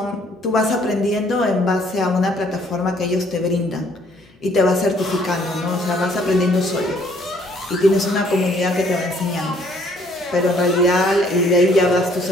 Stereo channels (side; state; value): both; normal; correlation 0.62